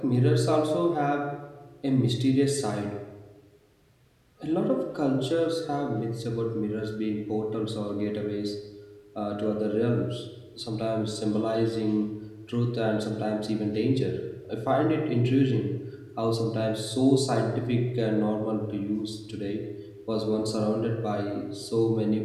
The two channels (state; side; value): identical; both; correlation 1.00